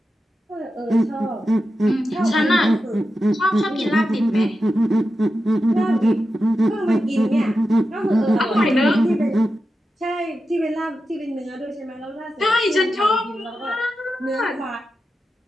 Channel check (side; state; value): both; normal; correlation 0.90